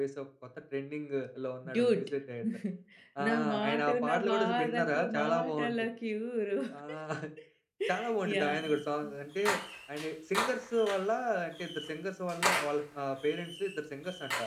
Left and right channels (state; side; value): identical; both; correlation 1.00